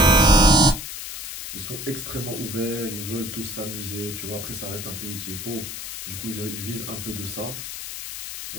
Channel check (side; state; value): left; noise; hiss, 8 dB below the sound